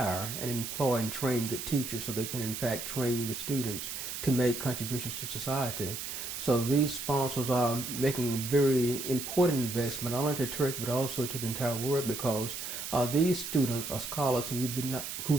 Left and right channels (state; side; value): noise; right; hiss, 6 dB below the sound